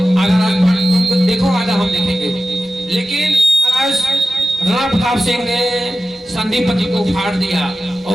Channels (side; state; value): both; normal; correlation 0.92